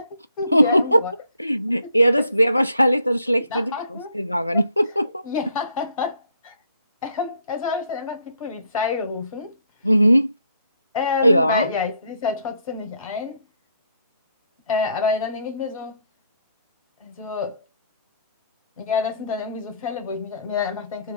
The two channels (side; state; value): both; inverted; correlation -0.70